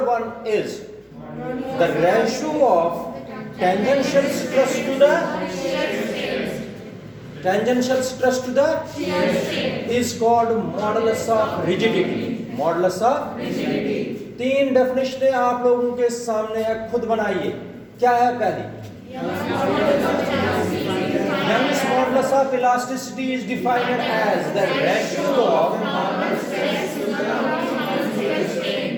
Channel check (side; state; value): both; identical; correlation 1.00